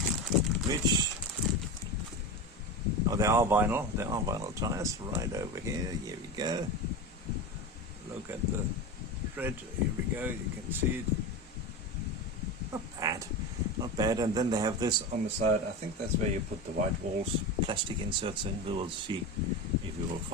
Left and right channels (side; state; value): both; normal; correlation 0.23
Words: which, oh, they are vinyl tires right over here. Here we go. Look at the tread. Here we go. You can see it. Not bad. And then they have this on the side. I think that's where you put the white walls, plastic inserts in. We will see if we will